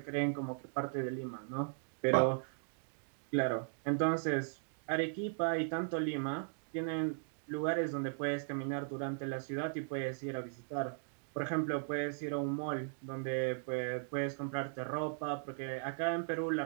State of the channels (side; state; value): left; silent; digital silence